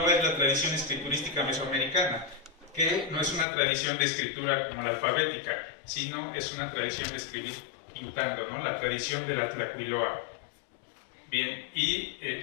es la tradición escriturística mesoamericana, que no es una tradición de escritura como la alfabética, sino es una tradición de escribir pintando, ¿no? La tradición de la tlacuiloa. Bien, y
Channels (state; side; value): drops out; right; at 3.5 s